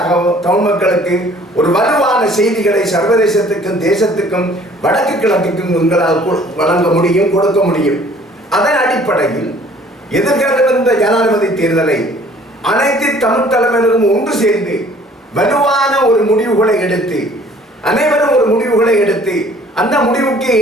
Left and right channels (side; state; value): both; normal; correlation 0.55